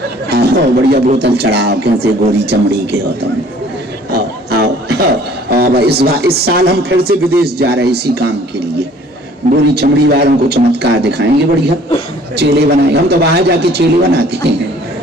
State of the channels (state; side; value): normal; both; correlation 0.54